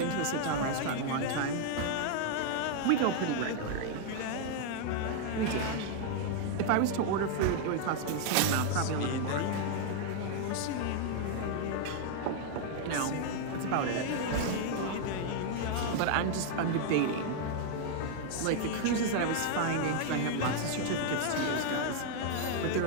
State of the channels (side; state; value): both; different; correlation 0.00